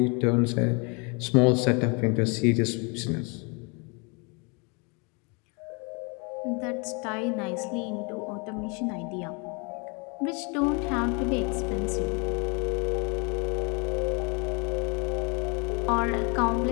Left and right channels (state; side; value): quieter; right; 32.7 dB